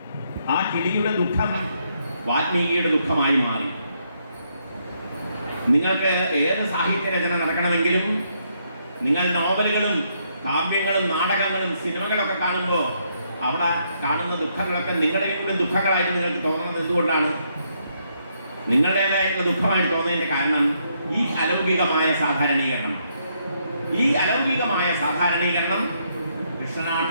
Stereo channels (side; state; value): both; inverted; correlation -0.75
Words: ആ കിളിയുടെ ദുഃഖം വാൽമീകിയുടെ ദുഃഖമായി മാറി. നിങ്ങൾക്ക് ഏത് സാഹിത്യ രചന നടക്കണമെങ്കിലും നിങ്ങൾ നോവലുകളും കാവ്യങ്ങളും നാടകങ്ങളും സിനിമകളൊക്കെ കാണുമ്പോൾ അവിടെ കാണുന്ന ദുഃഖങ്ങളൊക്കെ നിങ്ങളുടെയും ദുഃഖങ്ങളായിട്ട് നിങ്ങൾക്ക് തോന്നുന്നത് എന്തുകൊണ്ടാണ്? നിങ്ങളുടേതായിട്ടുള്ള ദുഃഖമായിട്ട് തോന്നുന്നതിൻ്റെ കാരണം ഈ അലൗകികമായ സാധാരണീകരണം. ഈ അലൗകികമായ സാധാരണീകരണം